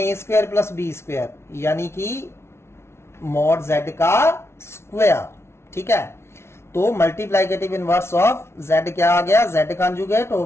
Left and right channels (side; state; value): right; late; 0.12 ms